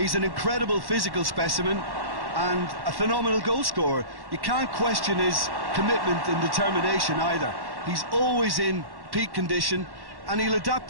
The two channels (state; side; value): late; left; 1.1 ms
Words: an incredible physical specimen and a phenomenal goal scorer. You can't question his commitment and determination either. He's always in peak condition and he'll